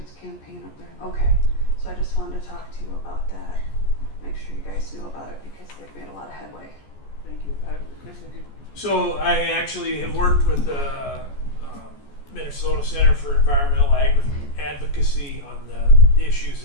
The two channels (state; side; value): late; right; 14 ms